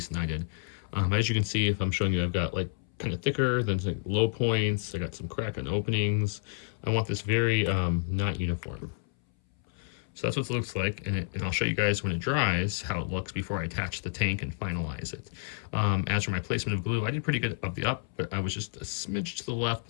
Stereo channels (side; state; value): right; silent; 58 dB below the other